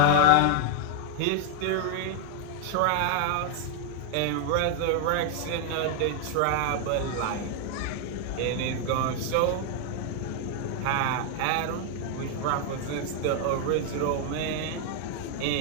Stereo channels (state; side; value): different; both; correlation 0.00